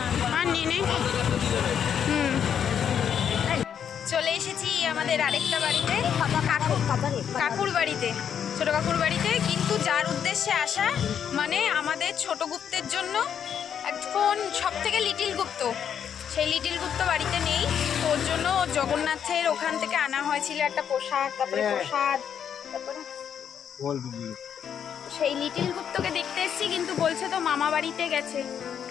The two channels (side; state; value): right; quieter; 8.3 dB